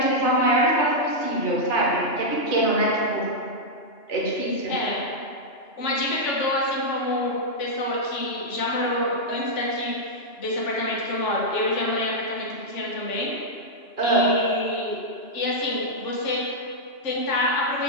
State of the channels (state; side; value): late; right; 2.9 ms